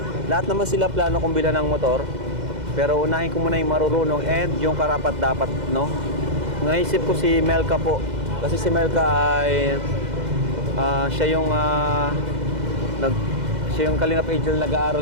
lahat naman sila plano kong bilhan ng motor, pero unahin ko muna yung marurunong and yung karapat-dapat, no? Naisip ko si Melka po, kasi si Melka ay siya yung siya yung Kalingap Angel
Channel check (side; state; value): left; late; 2.0 ms